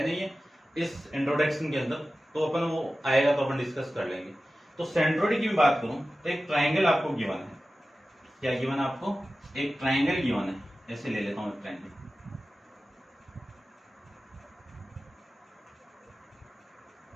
नहीं है इस इंट्रोडक्शन के अंदर, तो अपन वो आएगा तो अपन डिस्कस कर लेंगे। तो सेंट्रॉइड की मैं बात करूं तो एक ट्राइंगल आपको गिवन है। क्या गिवन है आपको? एक ट्राइंगल गिवन है। ऐसे ले लेता हूं एक ट्राइंगल,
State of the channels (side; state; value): both; normal; correlation 0.95